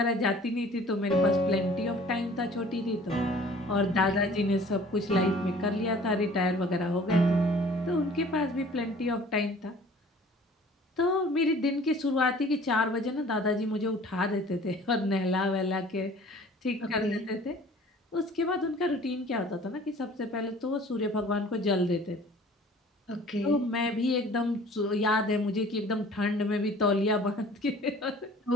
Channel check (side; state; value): both; normal; correlation 0.50